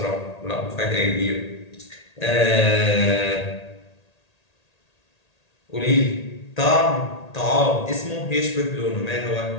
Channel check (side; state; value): right; late; 1.8 ms